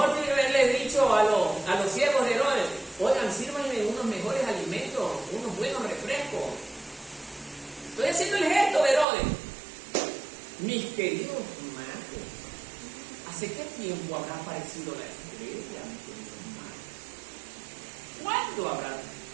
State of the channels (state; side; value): drops out; left; at 9.1 s